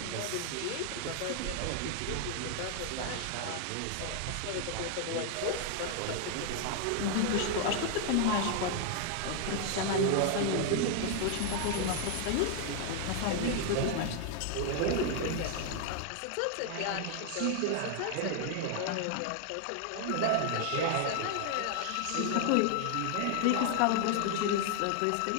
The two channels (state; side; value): different; both; correlation 0.00